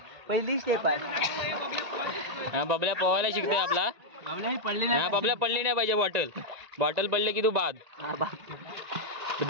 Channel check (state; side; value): late; left; 1.9 ms